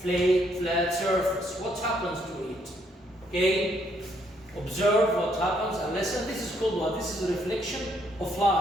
surface? What happens to it? Okay, observe what happens and listen. This is called what? This is a reflection of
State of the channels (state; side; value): normal; both; correlation 0.71